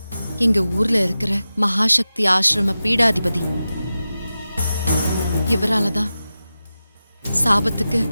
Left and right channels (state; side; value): inverted; both; correlation -0.93